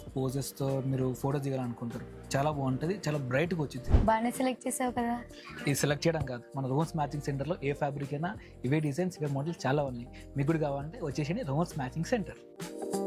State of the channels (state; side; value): identical; both; correlation 1.00